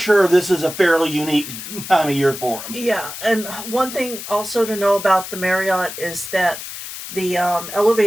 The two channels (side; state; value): left; noise; hiss, 10 dB below the sound